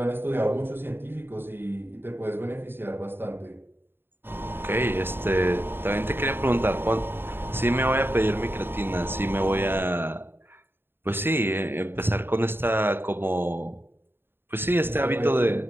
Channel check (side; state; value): left; late; 0.10 ms